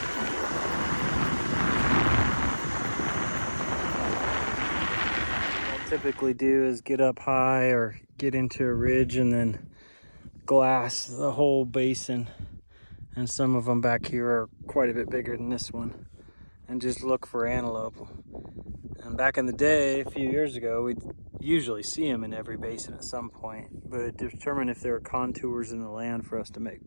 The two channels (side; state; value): both; inverted; correlation -1.00